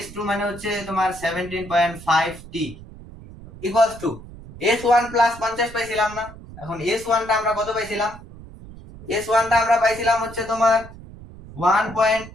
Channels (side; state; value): right; noise; rumble, 17 dB below the sound